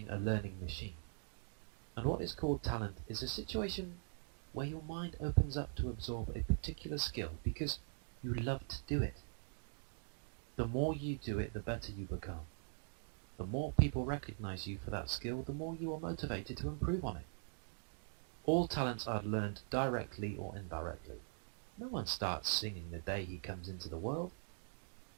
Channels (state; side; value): silent; left; digital silence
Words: a learning machine, and what is called talent is a situation where your mind opens up to absorb a particular skill because you love to do it. The more you do it, the better you become. The more people recognize you for that skill, the more you are motivated to improve on it. All talents are learned directly or indirectly. No one starts singing the day he comes into the world.